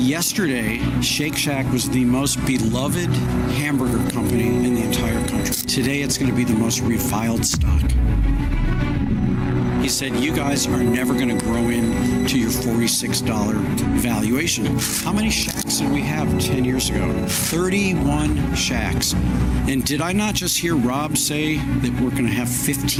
Shake Shack was the most beloved hamburger company in the entire country. Today, it's going to be the most reviled stock. He said, you guys are never going to grow into your $46 valuation. How many Shacks did we have 10 years ago? 31 Shacks. And did I not just hear Rob say that we're going to have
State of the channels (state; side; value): identical; both; correlation 1.00